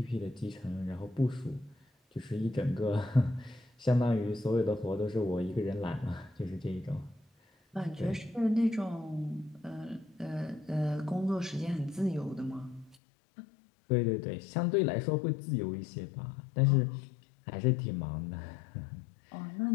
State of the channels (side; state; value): right; drops out; at 13.0 s